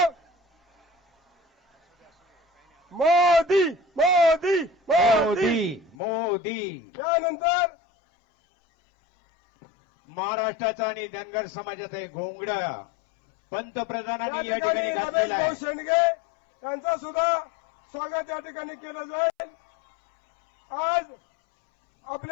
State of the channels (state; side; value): drops out; right; at 6.0 s